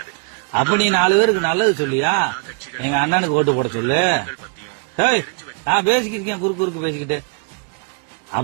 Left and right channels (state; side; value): quieter; left; 37.0 dB